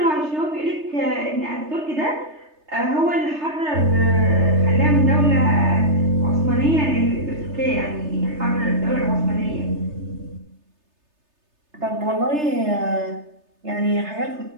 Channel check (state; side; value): late; left; 3.3 ms